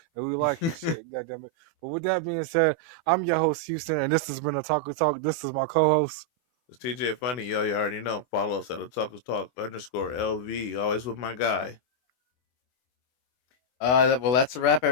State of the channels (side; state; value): right; late; 24 ms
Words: and we like your shit. Goddamn it. But with that being said, I'm your host Houston, and this has been Otaku Talk. This is my co-host. It's TJ Funny, yo. You already know. Follow us at Otaku Talk _LV. Always with my guy. Well, that's a wrap,